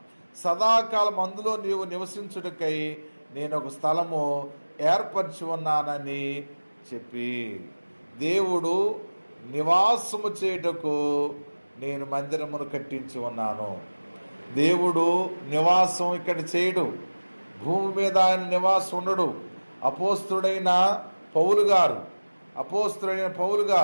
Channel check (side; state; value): both; inverted; correlation -1.00